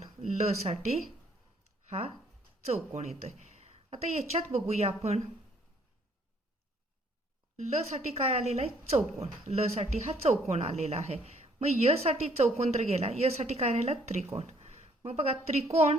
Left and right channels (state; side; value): normal; both; correlation 0.64